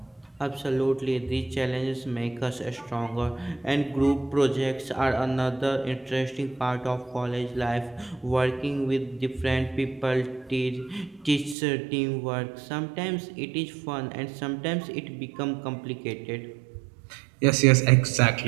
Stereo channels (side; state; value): left; drops out; at 11.6 s